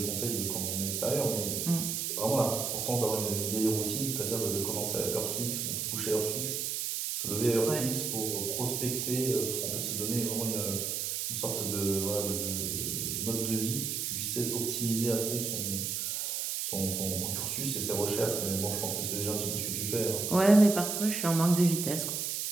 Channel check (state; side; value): noise; right; hiss, 1 dB below the sound